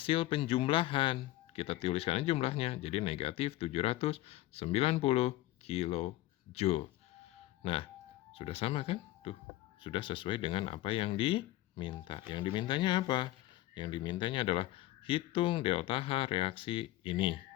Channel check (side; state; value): right; quieter; 16.5 dB